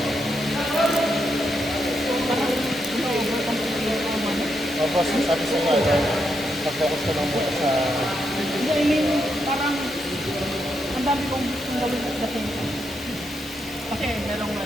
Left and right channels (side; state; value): both; normal; correlation 0.81